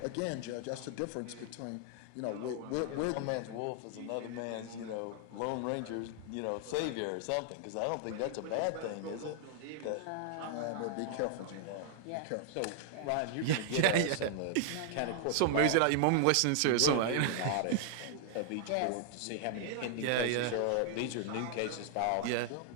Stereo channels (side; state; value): both; different; correlation -0.01